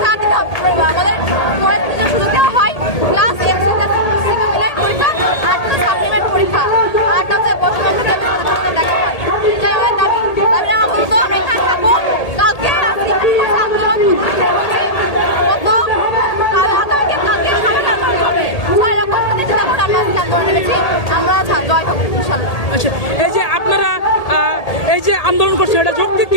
দিতে হবে, আমাদের পরের দিনের সুযোগ দেওয়া হয়, প্লাস এমসিকিউ প্লাস সিকিউ মিলাই পরীক্ষা, আরটা সাপ্লিমেন্ট পরীক্ষা, আরটা হচ্ছে বর্তমান দেখা হয়। এটাই আমার দাবি। দাবি আমার বলতো আমরা এখানে থাকবো, কালকে আচ্ছা, এই যে আপনারা এই যে আন্দোলন করছেন, এটা যৌক্তিক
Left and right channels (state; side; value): late; right; 1.8 ms